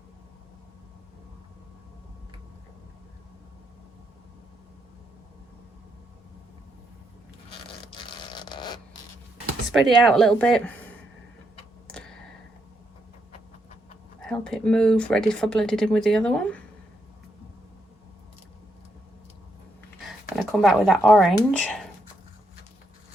Spread it out a little bit. Help it move, ready for blending in with the other one. Gonna come back with that orange.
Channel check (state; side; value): normal; both; correlation 0.79